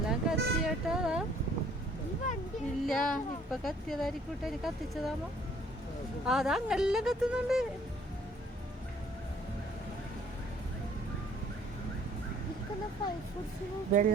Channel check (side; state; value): both; normal; correlation 0.59